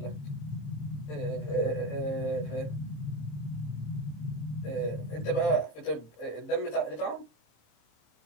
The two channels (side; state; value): right; late; 26 ms